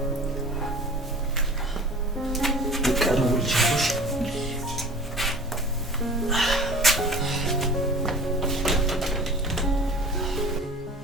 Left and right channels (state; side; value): normal; both; correlation 0.42